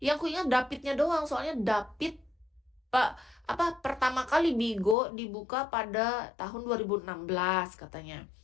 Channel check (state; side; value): drops out; right; at 5.0 s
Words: aku ingat Davidnya doang, soalnya David Pak pertama kali Bigo dibuka pada tahun 2016 katanya.